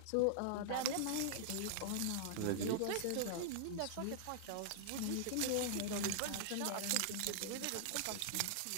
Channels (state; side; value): different; both; correlation -0.01